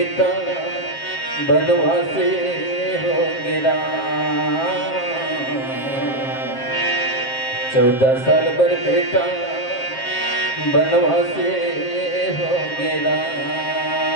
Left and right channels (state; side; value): late; right; 7.5 ms